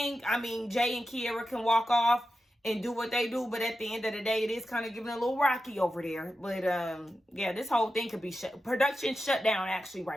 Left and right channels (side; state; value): both; normal; correlation 0.91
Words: I mean, Jay and Kiera can walk off and do what they do, but at the end of the day, it is kind of giving a little rocky over there. But yeah, this whole thing could be production shut down actually